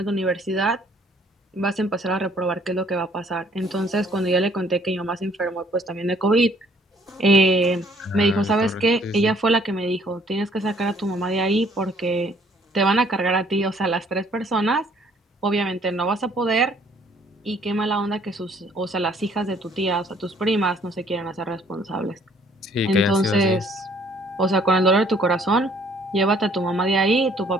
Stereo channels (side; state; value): both; normal; correlation 0.61